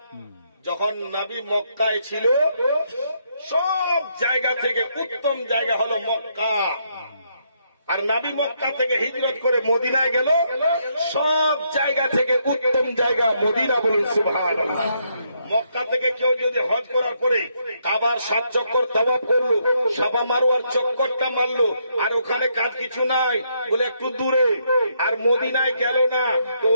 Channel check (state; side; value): inverted; both; correlation -0.75